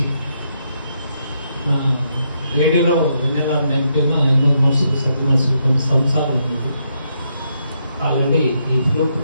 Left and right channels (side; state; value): both; inverted; correlation -0.78